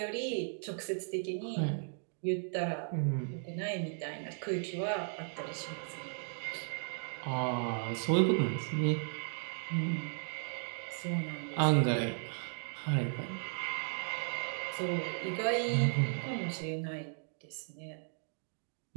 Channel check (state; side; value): silent; left; digital silence